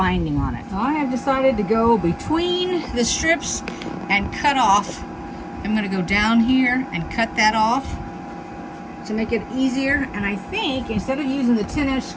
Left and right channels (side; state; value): both; identical; correlation 1.00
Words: on it. So I have decided to go between the strips and cut off. I'm going to go down here and cut that off to make it easier. And I think instead of using the 10-inch